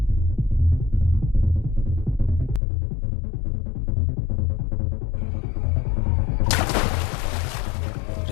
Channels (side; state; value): right; drops out; at 2.6 s